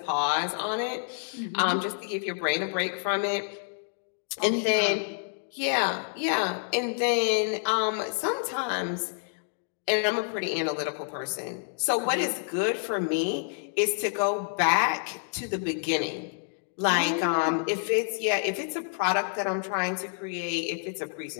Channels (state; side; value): silent; right; 59 dB below the other